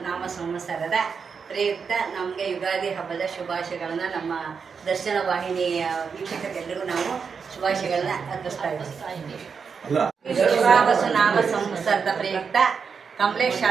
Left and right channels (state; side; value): quieter; left; 5.9 dB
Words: ನಾಮ ಸಂವತ್ಸರದ ಪ್ರಯುಕ್ತ ನಮಗೆ ಯುಗಾದಿ ಹಬ್ಬದ ಶುಭಾಶಯಗಳನ್ನು ನಮ್ಮ ದರ್ಶನ ವಾಹಿನಿಯ ವೀಕ್ಷಕರಿಗೆಲ್ಲರಿಗೂ ನಾವು ಶುಭಾಶಯಗಳನ್ನ ಅರ್ಪಿಸ್ತಾ ಇದ್ದೀವಿ. ವಿಶ್ವಾವಸು ನಾಮ ಸಂವತ್ಸರದ ಪ್ರಯುಕ್ತ ಕಮಲೇಶ್